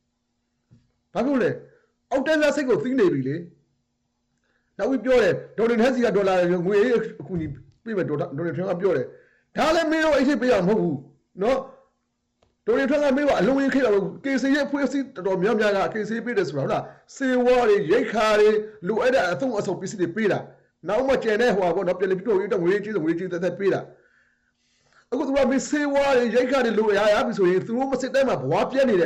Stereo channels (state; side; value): identical; both; correlation 1.00